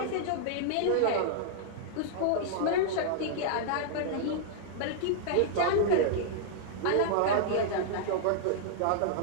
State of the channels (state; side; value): different; both; correlation -0.02